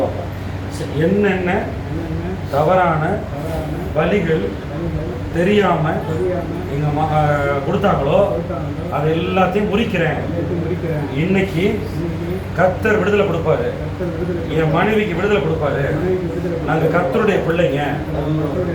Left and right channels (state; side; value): identical; both; correlation 1.00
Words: வாங்க. என்னென்ன தவறான பலிகள் தெரியாமல் எங்கள் கொடுத்தாங்களோ அது எல்லாத்தையும் முறிக்கிறேன். இன்னைக்கு கர்த்தர் விடுதலை கொடுப்பாரு. என் மனைவிக்கு விடுதலை கொடுப்பாரு. நாங்கள் கர்த்தருடைய பிள்ளைங்க.